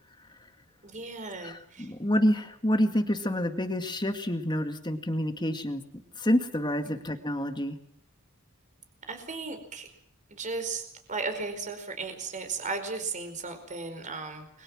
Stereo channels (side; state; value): both; normal; correlation 0.72